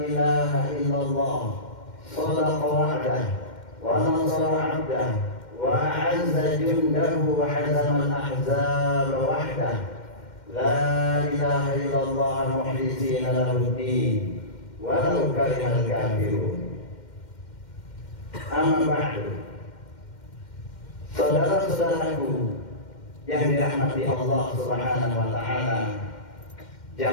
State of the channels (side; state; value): right; late; 2.1 ms